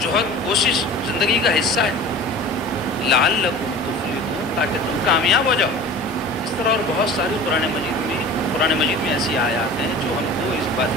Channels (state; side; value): normal; both; correlation 0.39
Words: کوشش زندگی کا حصہ ہے۔ لعلکم تفلحون، تاکہ تم کامیاب ہو جاؤ۔ اس طرح اور بہت ساری قرآن مجید میں ایسی آیات ہیں جو ہم کو اس